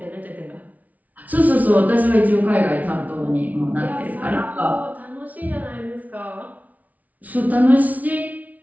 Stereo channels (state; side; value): late; left; 0.073 ms